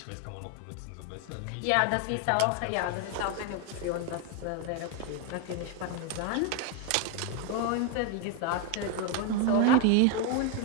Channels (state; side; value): different; both; correlation 0.01